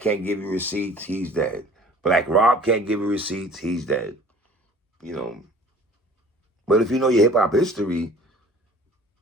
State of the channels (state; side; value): normal; both; correlation 0.48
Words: give you receipts. He's dead. Black Rob can't give you receipts. He's dead. But if you know your hip hop history,